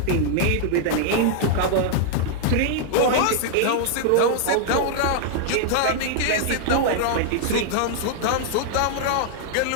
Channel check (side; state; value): both; different; correlation -0.01